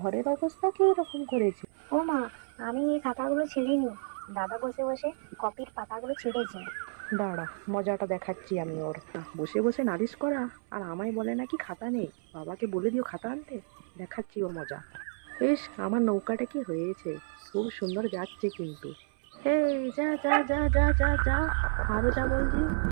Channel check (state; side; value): silent; left; 57 dB below the other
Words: অবস্থা কি এরকম করেছে? ও মা, আমি এই খাতাগুলো ছেড়িনি, দাদা বসে বসে কপির পাতাগুলো ছেড়েছে। দাঁড়া, মজাটা দেখাচ্ছি আমি ওর। বসে বসে নালিশ করা, আর আমায় বলে নাকি খাতা নেই। বাবাকে বলে দিও খাতা আনতে। দেখাচ্ছি ওর মজা। ইস, আমার নৌকাটা কি হয়েছে, খুব সুন্দর যাচ্ছে কিন্তু। এই যা যা যা যা যা যা, আরো যা বলছি।